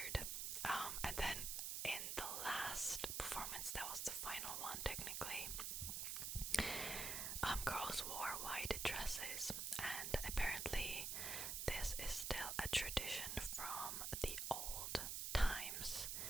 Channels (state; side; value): noise; right; hiss, 1 dB below the sound